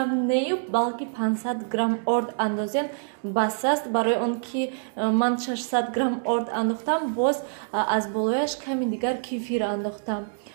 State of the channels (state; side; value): silent; left; digital silence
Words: нею балки 500 грамм орд андозем бас аст. Барои он ки ман 600 грамм орд андохтам, боз аз болояш ками дигар кефир андохтам.